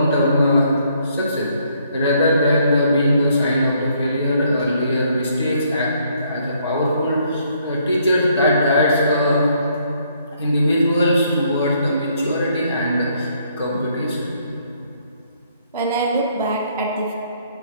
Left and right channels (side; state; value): both; inverted; correlation -0.69